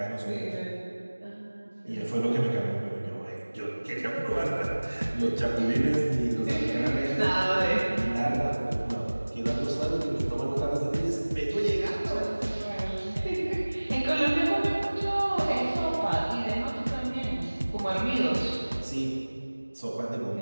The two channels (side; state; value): both; inverted; correlation -1.00